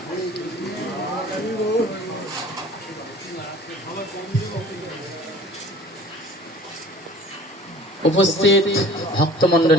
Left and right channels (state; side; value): normal; both; correlation 0.47